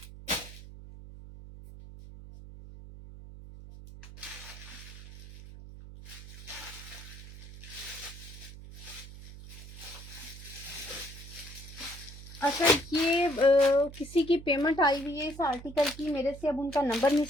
अच्छा ये किसी की पेमेंट आई हुई है इस आर्टिकल की मेरे से, अब उनका नंबर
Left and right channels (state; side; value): noise; right; hum, 15 dB below the sound